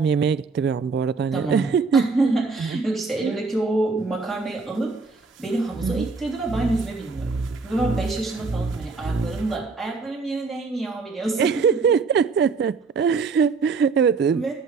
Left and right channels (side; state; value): left; quieter; 4.5 dB